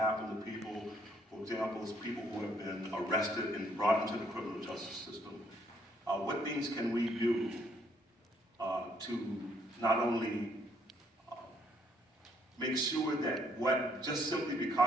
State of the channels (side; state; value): both; normal; correlation 0.68